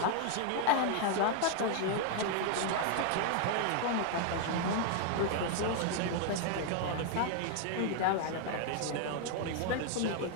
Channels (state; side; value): different; both; correlation 0.00